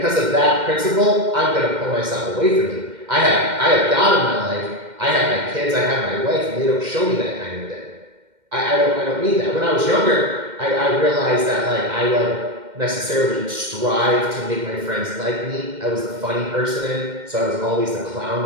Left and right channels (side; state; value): left; late; 2.1 ms